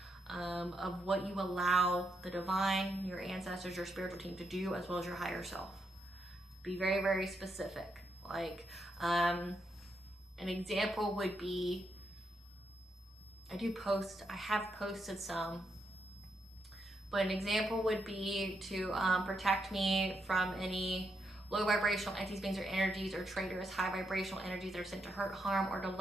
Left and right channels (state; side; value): normal; both; correlation 0.80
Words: of what you allow the divine, your ancestors, your spiritual team to do, as well as your higher self. Be very, very specific. Like an example would be, I have posted some, but an example would be to protect me from any low vibrational entities, beings, or energies, or traitorous high vibrational energies that are sent to hurt, harm, or